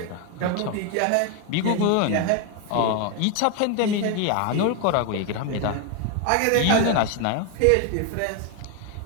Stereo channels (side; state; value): both; different; correlation 0.01